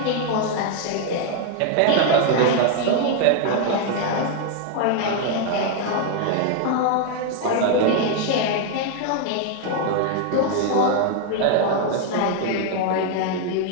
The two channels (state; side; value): different; both; correlation 0.00